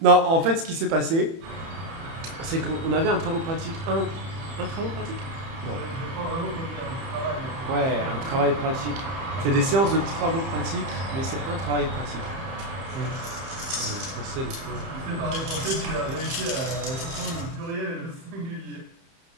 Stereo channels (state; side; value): late; left; 30 ms